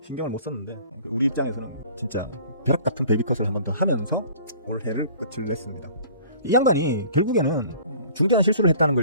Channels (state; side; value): inverted; both; correlation -0.49